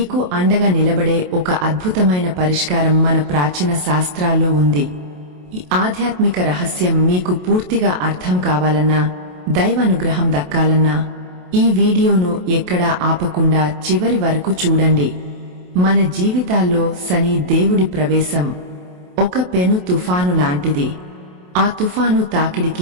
అండగా నిలబడే ఒక అద్భుతమైన పరిష్కారం మన ప్రాచీన శాస్త్రాల్లో ఉంది. ఈ ఆధ్యాత్మిక రహస్యం మీకు పూర్తిగా అర్థం కావాలన్నా, దైవానుగ్రహం దక్కాలన్నా ఈ వీడియోను ఎక్కడా ఆపకుండా చివరి వరకు చూడండి. మన జీవితాల్లో శని దేవుడి ప్రవేశం ఒక పెను తుఫాను లాంటిది. ఆ తుఫాను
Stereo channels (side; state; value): left; late; 28 ms